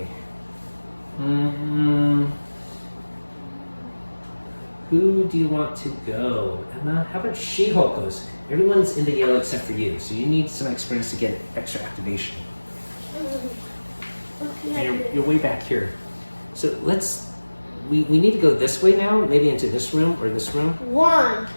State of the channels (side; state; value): both; inverted; correlation -1.00